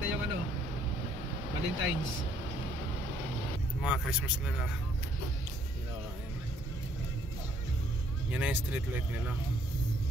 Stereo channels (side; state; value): both; normal; correlation 0.64